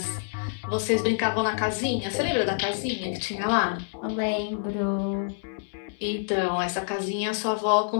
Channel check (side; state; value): right; silent; digital silence